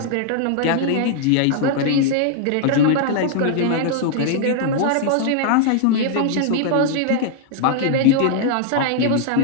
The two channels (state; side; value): different; both; correlation 0.00